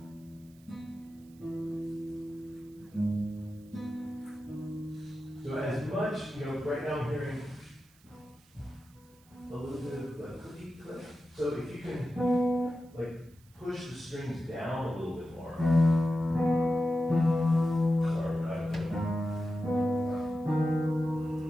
So as much, right now I'm hearing a little bit of a cookie click. So if you can, like, push the strings down a little bit more. Sorry, we're not doing that.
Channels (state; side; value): noise; right; hiss, 30 dB below the sound